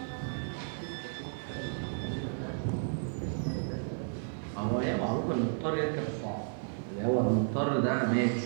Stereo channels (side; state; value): left; silent; digital silence